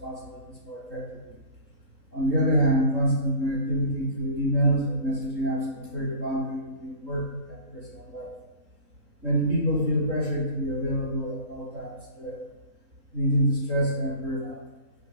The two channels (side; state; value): left; late; 3.8 ms